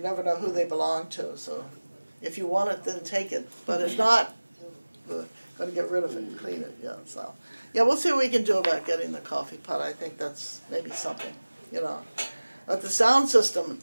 never know who they belong to. So, if you want it, then take it. But if not, we're going to get rid of it and clean it. Yeah. So. Yeah, we'll see what we can do about getting the coffee pot. I think that's maybe something, But the sound system,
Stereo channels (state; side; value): inverted; both; correlation -1.00